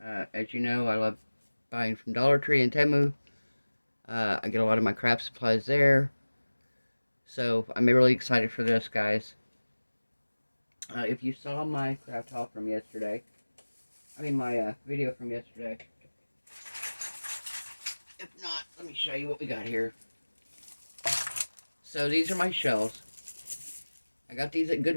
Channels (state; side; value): inverted; both; correlation -1.00